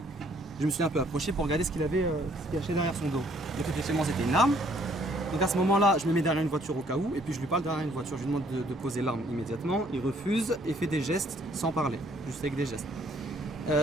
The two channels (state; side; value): normal; both; correlation 0.64